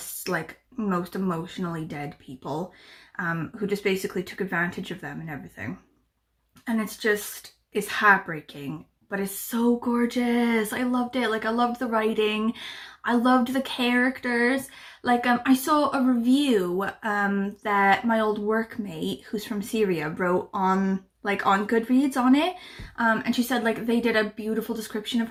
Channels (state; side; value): identical; both; correlation 1.00